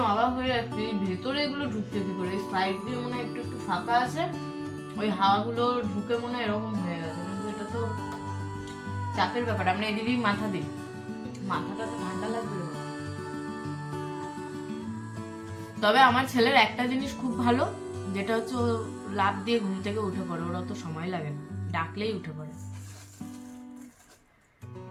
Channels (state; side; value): identical; both; correlation 1.00